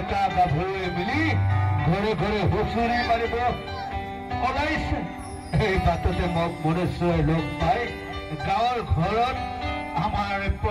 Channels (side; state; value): both; identical; correlation 1.00